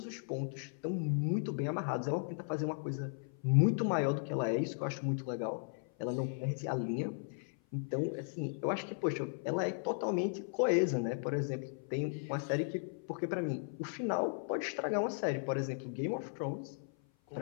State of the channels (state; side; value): silent; right; 54 dB below the other